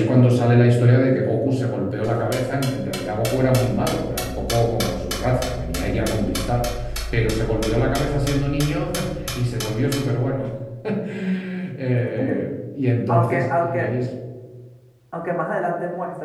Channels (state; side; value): identical; both; correlation 1.00